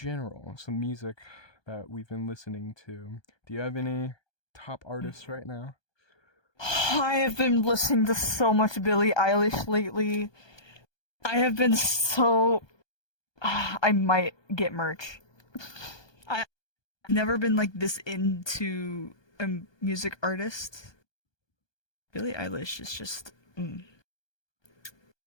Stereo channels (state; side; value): late; right; 1.2 ms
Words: some music that we've been listening to. Do you have any top artists right now? I have been listening to so much Billie Eilish lately. I have been so. I might get merch. I've never been like this into a music artist. Billie Eilish is just.